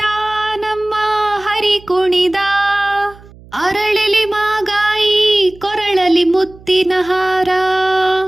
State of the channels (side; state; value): right; noise; hum, 23 dB below the sound